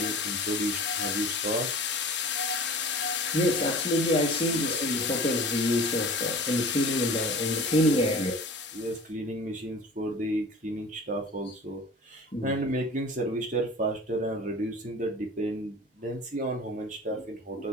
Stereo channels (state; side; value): normal; both; correlation 0.40